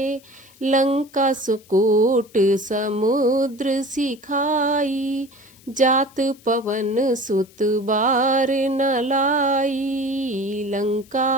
लंका सुकोट समुद्र सिखाई, जात पवन सुत बार न लाई।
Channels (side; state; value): left; noise; hiss, 27 dB below the sound